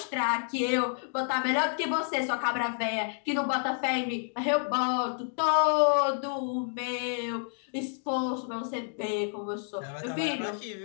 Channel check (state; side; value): silent; right; 58 dB below the other